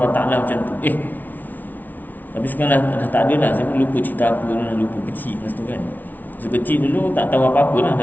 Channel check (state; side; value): late; right; 0.082 ms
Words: Ta'ala macam tu. Tapi sekarang dah tak ada dah. Saya pun lupa cerita apa, dah lupa kecil masa tu kan. Masa kecil dulu tak tahu apa-apa lah,